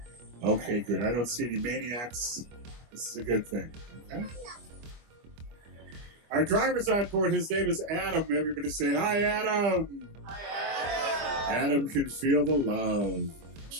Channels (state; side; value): late; left; 25 ms